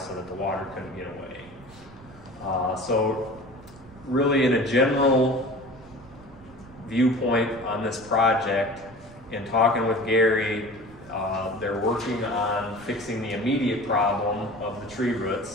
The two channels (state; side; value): noise; right; rumble, 22 dB below the sound